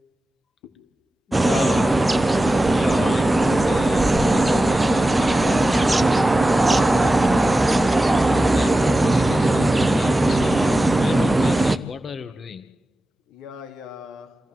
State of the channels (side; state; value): both; normal; correlation 0.94